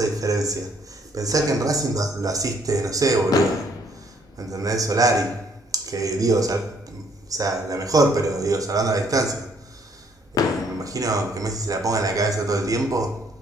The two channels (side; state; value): both; normal; correlation 0.65